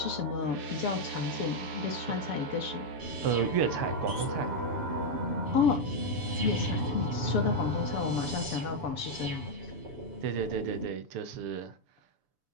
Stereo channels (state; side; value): late; left; 7.0 ms